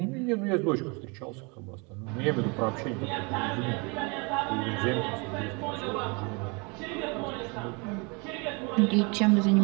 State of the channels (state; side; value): quieter; left; 30.6 dB